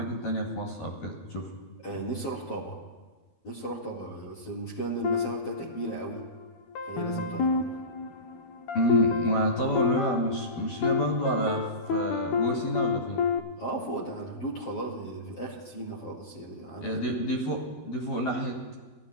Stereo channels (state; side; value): late; right; 12 ms